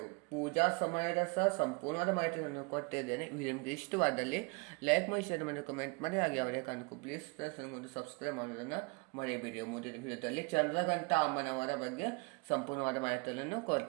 ಪೂಜಾ ಸಮಯದ ಸಹ ಸಂಪೂರ್ಣವಾದ ಮಾಹಿತಿಯನ್ನು ಕೊಟ್ಟಿದ್ದೇನೆ. ವಿಡಿಯೋ ನಿಮಗೆ ಇಷ್ಟವಾದಲ್ಲಿ ಲೈಕ್ ಮಾಡಿ, ಶೇರ್ ಮಾಡಿ, ಕಮೆಂಟ್ ಮಾಡಿ. ಹಾಗೆ ಅವರೇ ಕಾಣಕು ಪ್ಲೀಸ್ ಫ್ರೆಂಡ್ಸ್ ನನಗೊಂದು ಸಬ್ಸ್ಕ್ರೈಬ್ ಮಾಡೋದನ್ನು ಮರೆಯಬೇಡಿ. ಮುಂದಿನ ವಿಡಿಯೋದಲ್ಲಿ ಚಂದ್ರಘಂಟ ಅಮ್ಮನವರ ಬಗ್ಗೆ ಸಂಪೂರ್ಣವಾದ ಮಾಹಿತಿಯನ್ನು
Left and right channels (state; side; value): quieter; left; 31.3 dB